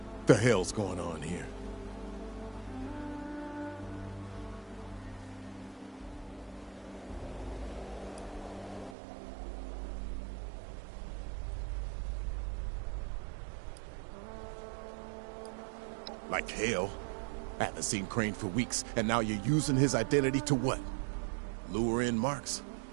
The hell's going on here? Like hell. I haven't seen Crane for weeks, and now you're using his identity to what? Lure in Marks?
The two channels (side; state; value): left; drops out; at 9.0 s